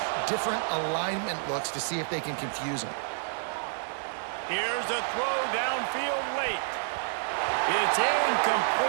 different alignment looks to see if they can confuse him. Here's a throw downfield late. It's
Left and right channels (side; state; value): left; silent; 58 dB below the other